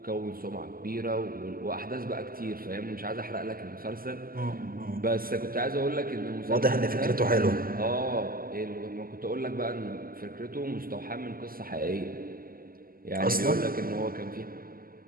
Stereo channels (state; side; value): late; left; 0.42 ms